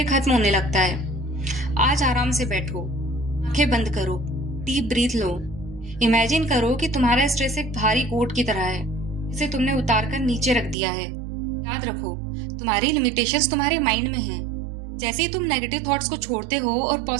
खत्म होने लगता है। आज आराम से बैठो, आंखें बंद करो, डीप ब्रीथ लो। इमेजिन करो कि तुम्हारा स्ट्रेस एक भारी कोट की तरह है जिसे तुमने उतार कर नीचे रख दिया है। याद रखो, तुम्हारी लिमिटेशंस तुम्हारे माइंड में हैं। जैसे ही तुम नेगेटिव थॉट्स को छोड़ते हो और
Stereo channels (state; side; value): drops out; left; at 10.8 s